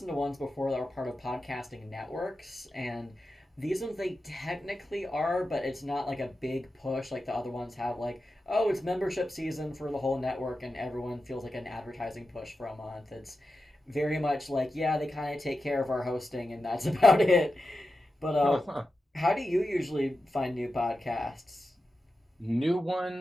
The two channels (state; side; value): normal; both; correlation 0.91